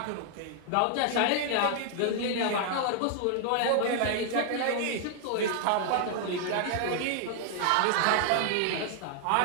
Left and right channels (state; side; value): different; both; correlation 0.00